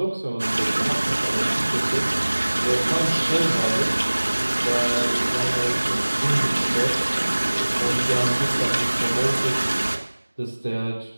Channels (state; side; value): inverted; both; correlation -1.00